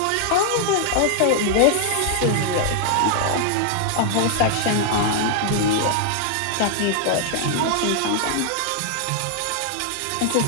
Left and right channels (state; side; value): different; both; correlation 0.00